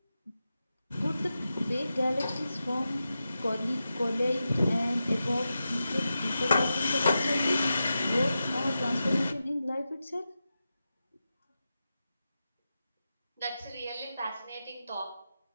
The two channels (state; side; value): inverted; both; correlation -0.91